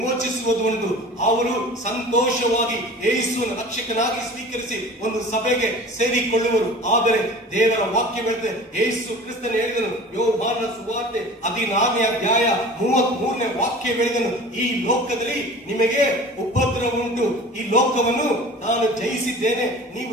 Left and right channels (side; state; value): both; normal; correlation 0.41